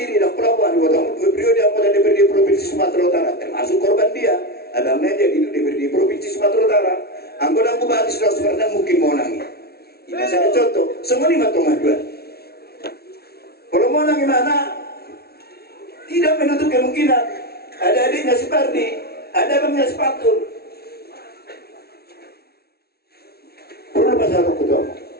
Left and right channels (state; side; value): late; right; 0.45 ms